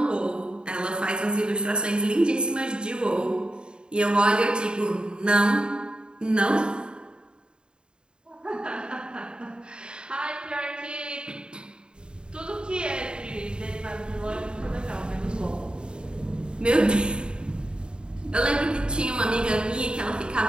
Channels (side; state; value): left; late; 0.050 ms